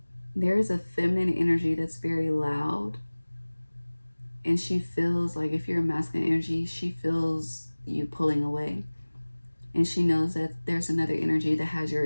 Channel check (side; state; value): both; inverted; correlation -1.00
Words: there is a feminine energy that's very loud. And she feels like, if you're a masculine energy, she feels you pulling away. And she knows that there's another energy that has your